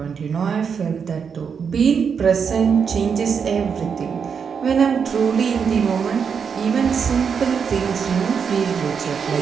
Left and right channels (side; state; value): left; quieter; 6.5 dB